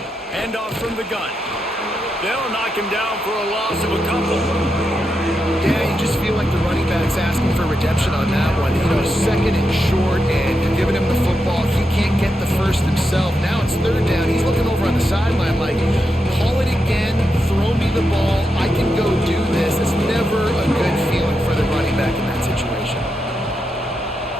Handoff from the gun. They'll knock him down for a loss of a couple. Yeah, you just feel like the running back's asking for redemption on that one. You know, 2nd and short, and you're giving him the football. He can't get the first himself. Now it's 3rd down. He's looking over on the sideline like, call it again, throw me the ball, I can go do this. It's never a good feeling for the running back in that situation.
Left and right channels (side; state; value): both; normal; correlation 0.86